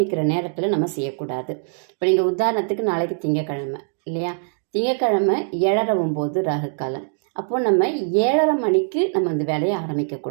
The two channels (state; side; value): silent; left; digital silence